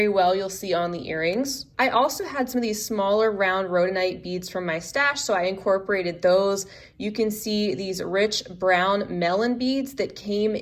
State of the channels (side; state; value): both; identical; correlation 1.00